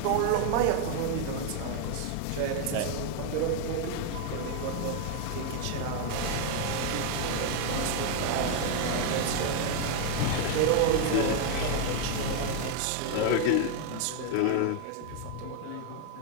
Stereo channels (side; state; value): both; different; correlation 0.01